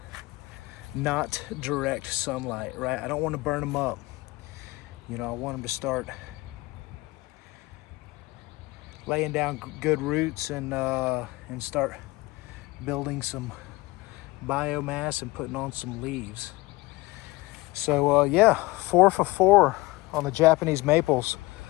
not direct sunlight, right? I don't want to burn them up. You know, I want them to start laying down good roots and start building some biomass and putting on some leaves. So yeah, 4 for 4 on the Japanese maples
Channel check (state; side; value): quieter; right; 21.3 dB